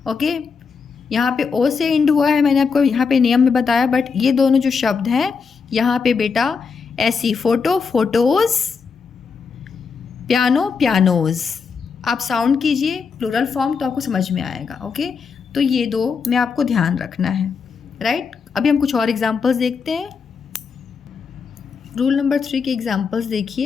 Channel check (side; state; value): right; quieter; 5.5 dB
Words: ओके, यहाँ पे O से एंड हुआ है, मैंने आपको यहाँ पे नियम में बताया, बट ये दोनों जो शब्द हैं यहाँ पे बेटा ऐसी, फ़ोटो, फ़ोटोज़, पियानो, पियानोज़। आप साउंड कीजिए प्लूरल फॉर्म तो आपको समझ में आएगा। ओके, तो ये दो में आपको ध्यान रखना है, राइट। अभी हम कुछ और एग्जांपल्स देखते हैं। रूल नंबर 3 के एग्जांपल्स